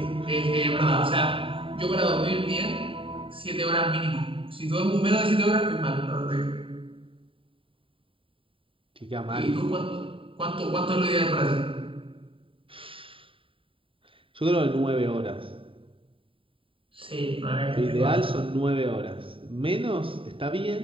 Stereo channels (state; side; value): late; left; 0.25 ms